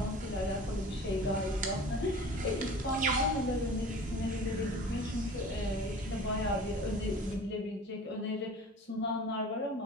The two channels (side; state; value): both; normal; correlation 0.42